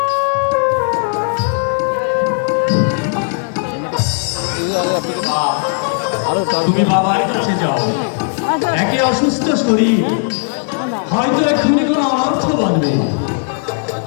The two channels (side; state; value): right; silent; 56 dB below the other